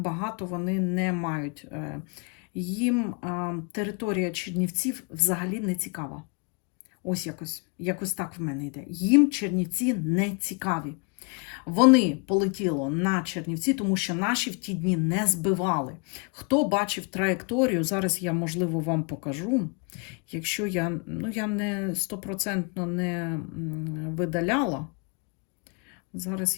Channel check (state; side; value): quieter; right; 33.7 dB